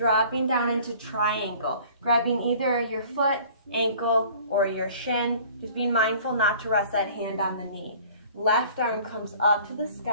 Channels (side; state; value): both; inverted; correlation -0.49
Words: down into triangle, grabbing either your foot, ankle, or your shin. Just being mindful not to rest that hand on the knee. Left arm comes up to the